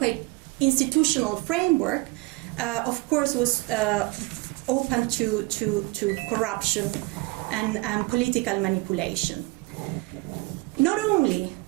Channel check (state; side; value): quieter; left; 23.7 dB